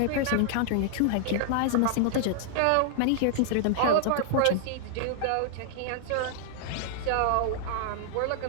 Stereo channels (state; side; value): different; both; correlation -0.01